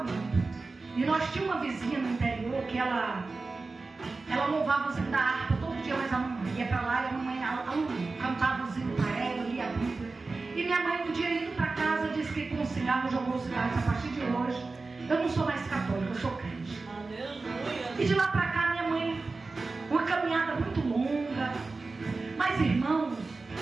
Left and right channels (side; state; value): left; quieter; 3.8 dB